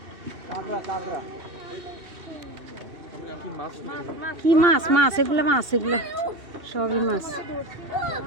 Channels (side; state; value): left; late; 2.8 ms